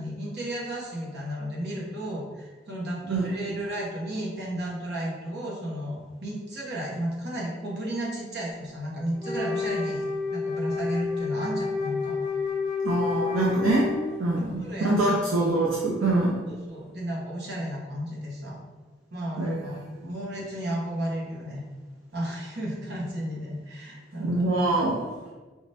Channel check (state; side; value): normal; both; correlation 0.62